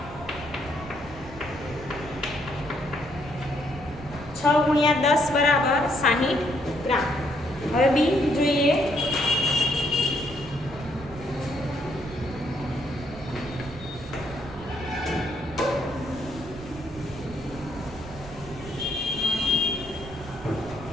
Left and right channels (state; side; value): noise; right; rumble, 15 dB below the sound